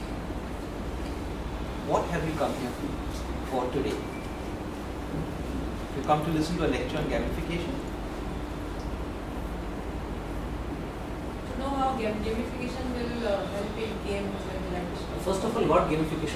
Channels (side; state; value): both; identical; correlation 1.00